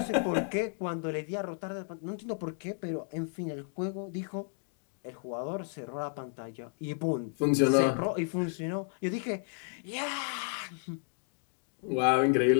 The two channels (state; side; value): silent; right; 56 dB below the other